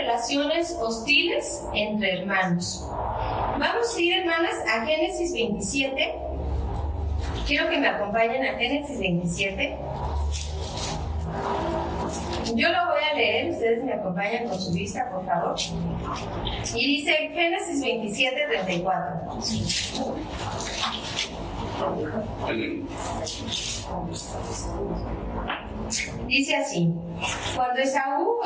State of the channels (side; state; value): both; identical; correlation 1.00